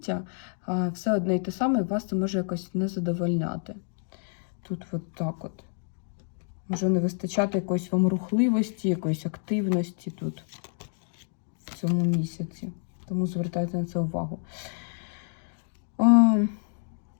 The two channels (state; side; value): silent; right; 59 dB below the other